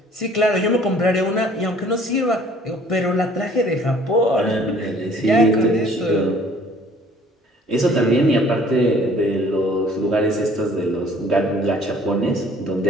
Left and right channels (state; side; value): normal; both; correlation 0.55